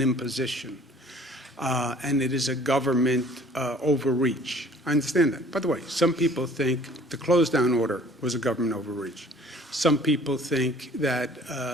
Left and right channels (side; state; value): both; normal; correlation 0.52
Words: imposition. And it is a government overreach. I understand that. By the way, some people think the close down order was a government overreach. Some people think that